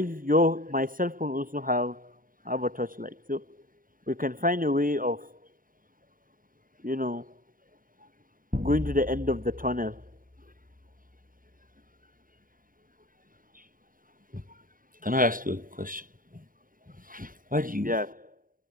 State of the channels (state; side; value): late; left; 0.40 ms